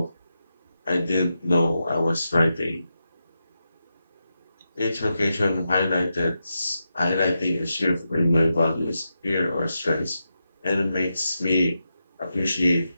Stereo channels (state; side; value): inverted; both; correlation -0.88